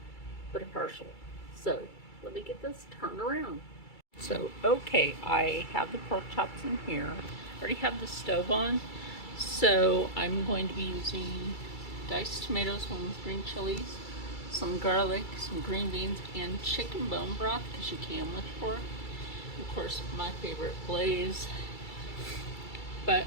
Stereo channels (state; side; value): late; right; 2.3 ms